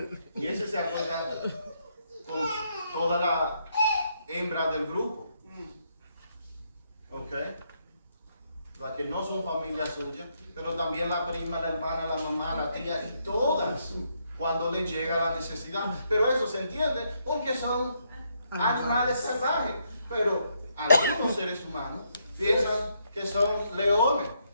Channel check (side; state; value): both; inverted; correlation -0.76